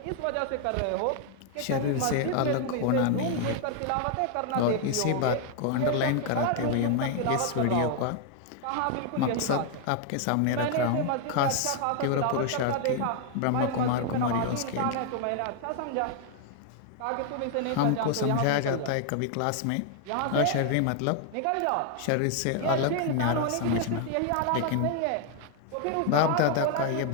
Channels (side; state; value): both; different; correlation 0.00